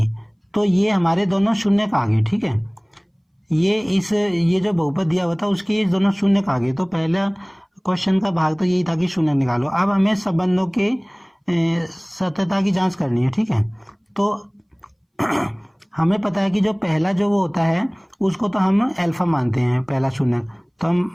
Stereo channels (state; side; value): identical; both; correlation 1.00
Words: तो ये हमारे दोनों शून्य का आ गए, ठीक है। ये जो बहुपद दिया हुआ था उसके ये दोनों शून्य का आ गए। तो पहला क्वेश्चन का भाग तो यही था कि शून्य निकालो। अब हमें संबंधों के सत्यता की जांच करनी है, ठीक है। तो हमें पता है कि जो पहला जो वो होता है उसको तो हम अल्फा मानते हैं, पहला शून्य, तो